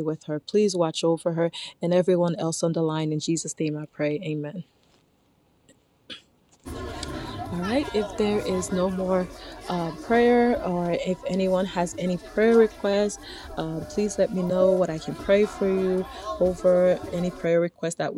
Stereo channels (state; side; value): identical; both; correlation 1.00